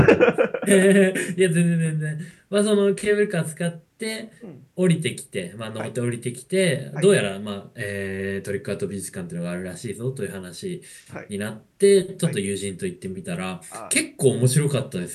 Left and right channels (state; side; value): identical; both; correlation 1.00